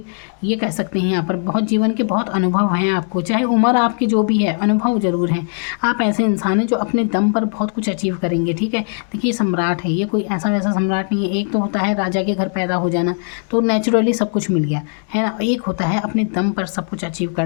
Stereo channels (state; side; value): silent; right; 56 dB below the other